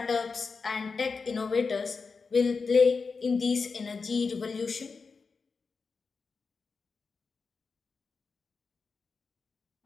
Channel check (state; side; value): quieter; right; 4.8 dB